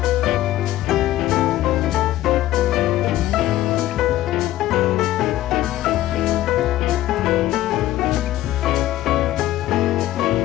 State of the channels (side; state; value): right; quieter; 14.7 dB